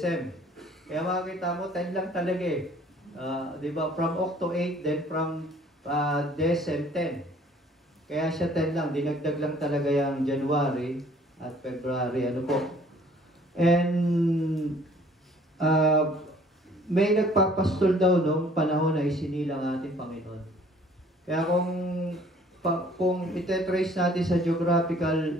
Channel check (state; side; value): normal; both; correlation 0.56